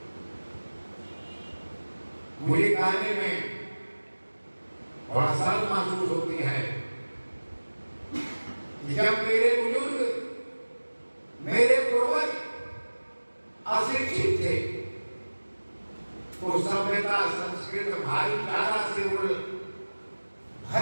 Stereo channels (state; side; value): inverted; both; correlation -1.00